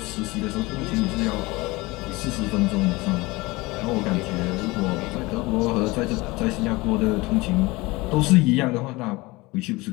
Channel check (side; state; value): right; quieter; 22.4 dB